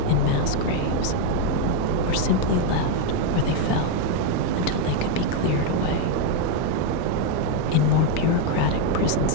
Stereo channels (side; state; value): both; different; correlation 0.01